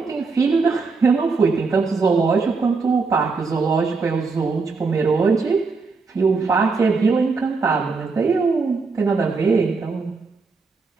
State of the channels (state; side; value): quieter; left; 4.4 dB